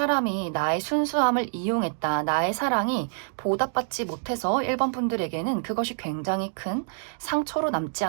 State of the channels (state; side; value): silent; left; digital silence